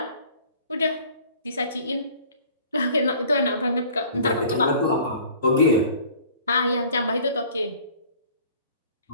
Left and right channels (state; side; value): inverted; both; correlation -0.50